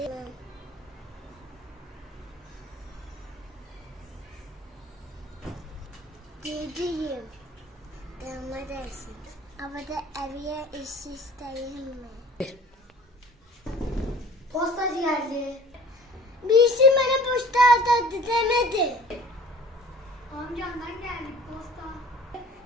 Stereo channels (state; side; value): normal; both; correlation 0.46